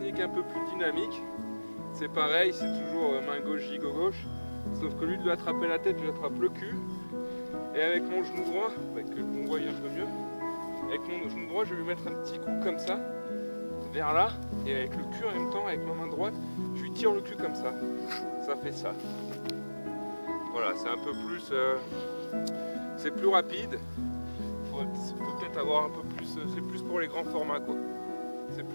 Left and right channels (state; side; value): inverted; both; correlation -1.00